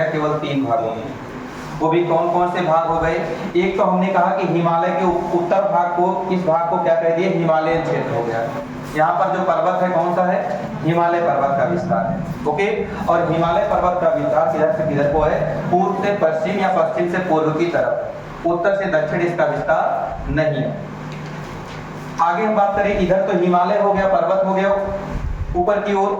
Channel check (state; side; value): identical; both; correlation 1.00